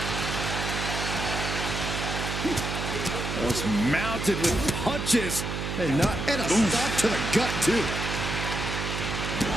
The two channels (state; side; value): noise; right; hum, 3 dB below the sound